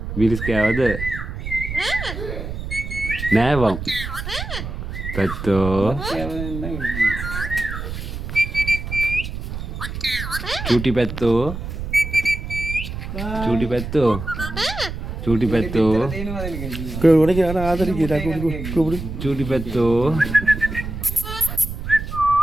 Miris kewa deh. Nah bang. Betul. Cuti betul. Cuti betul. Cuti betul. Kalau mana kita ada di kita kubur. Cuti betul.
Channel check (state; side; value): noise; right; rumble, 7 dB below the sound